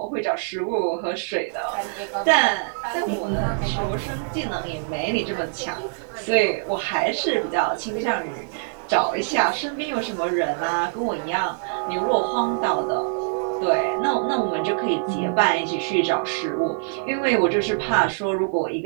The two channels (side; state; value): left; silent; 63 dB below the other